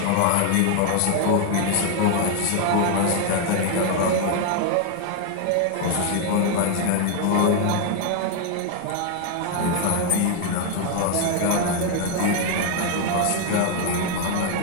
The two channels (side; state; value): both; different; correlation 0.00